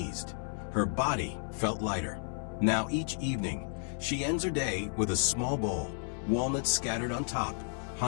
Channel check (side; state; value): right; silent; 56 dB below the other